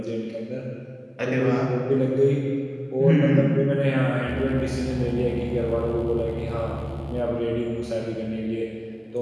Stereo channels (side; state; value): both; identical; correlation 1.00